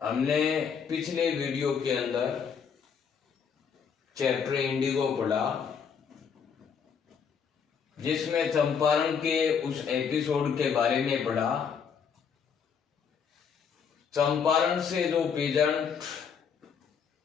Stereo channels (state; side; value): quieter; right; 6.8 dB